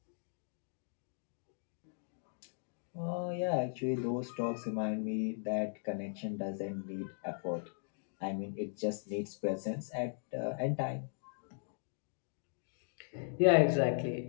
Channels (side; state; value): right; silent; digital silence